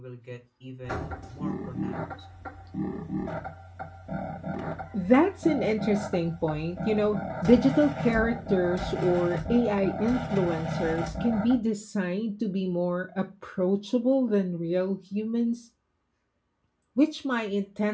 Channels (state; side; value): identical; both; correlation 1.00